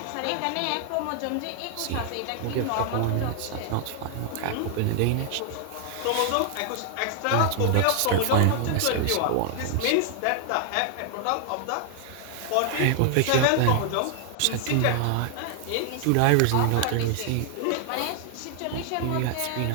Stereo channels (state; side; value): different; both; correlation 0.00